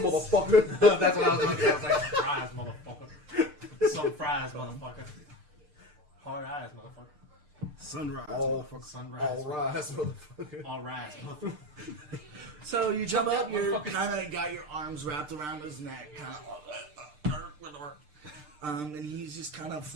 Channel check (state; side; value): late; left; 6.7 ms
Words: motherfucker! That's what I was going to say. I was like, surprise, motherfucker. Some fries, motherfucker. Hard eyes, motherfucker. Sunrise, All, motherfucker. Sunrise. all rise, motherfucker. All rise, motherfucker. So you jump Jump up, up, you're motherfucker. kind of got your arms wrapped around his neck, and he's just kind of